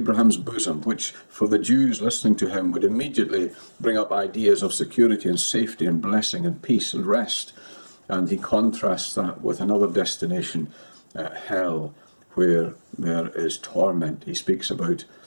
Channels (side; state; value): both; inverted; correlation -1.00